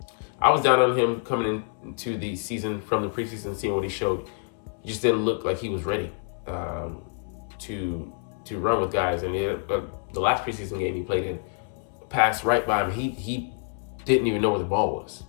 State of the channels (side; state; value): right; silent; 56 dB below the other